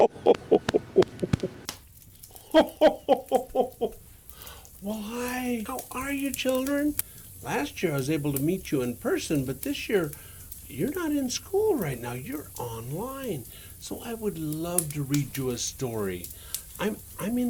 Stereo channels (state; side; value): identical; both; correlation 1.00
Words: Well, hi. How are you, children? Last year I was able to meet you in person, but this year you're not in school right now. You're online. So I would love to read you a story. I'm